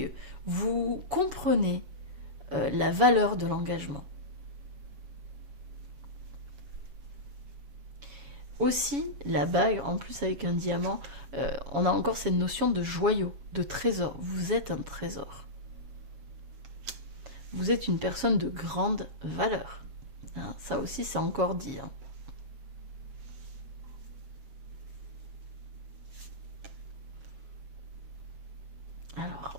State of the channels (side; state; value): left; late; 7.2 ms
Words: Vous comprenez la valeur de l'engagement. Aussi, la bague, en plus avec un diamant, on a encore cette notion de joyau, de trésor. Vous êtes un trésor. Vous êtes une personne de grande valeur. Hein, ça aussi, c'est encore dit. Hein. Alors,